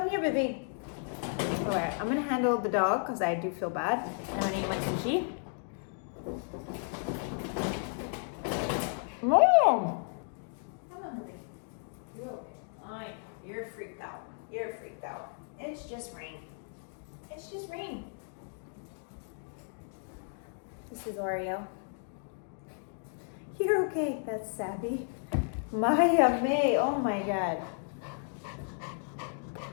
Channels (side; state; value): right; silent; 56 dB below the other